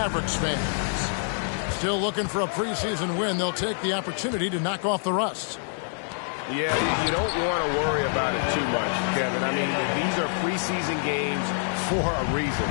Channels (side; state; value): right; silent; digital silence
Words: fans. Still looking for a preseason win. They'll take the opportunity to knock off the rust. Yeah, you don't want to worry about it too much, Kevin. I mean, these are preseason games for a reason.